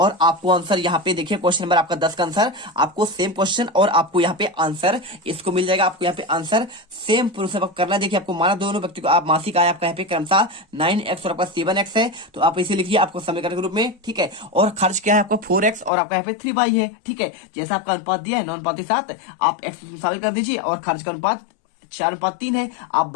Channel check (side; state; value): right; drops out; at 15.9 s